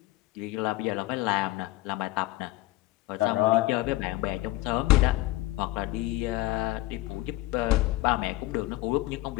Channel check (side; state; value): right; quieter; 17.9 dB